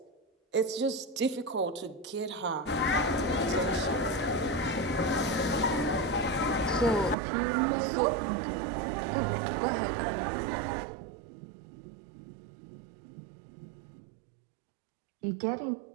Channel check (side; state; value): left; drops out; at 7.2 s